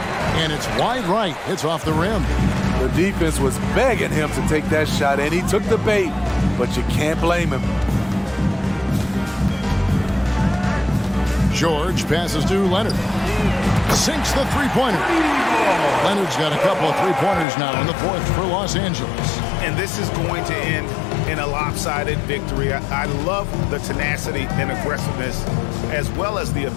And it's wide right. It's off the rim. The defense was begging him to take that shot, and he took the bait, but you can't blame him. George passes to Leonard. Sinks the 3-pointer. Leonard's got a couple of 3-pointers now in the 4th for Los Angeles. And this is going to end in a lopsided victory. I love the tenacity and aggressiveness, as well as the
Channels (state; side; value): drops out; right; at 17.4 s